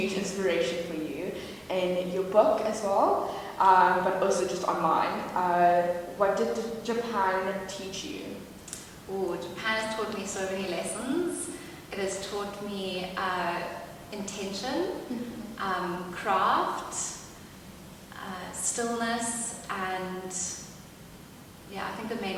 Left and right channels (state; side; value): identical; both; correlation 1.00